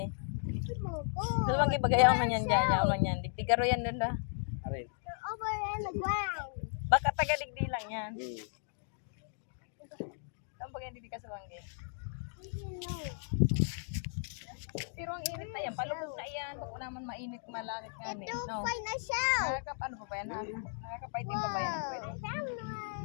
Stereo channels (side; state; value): right; silent; digital silence